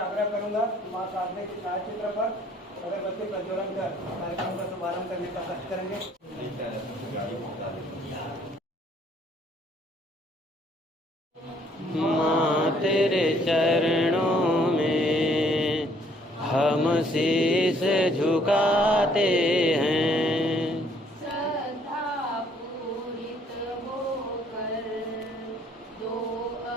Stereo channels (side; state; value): both; normal; correlation 0.63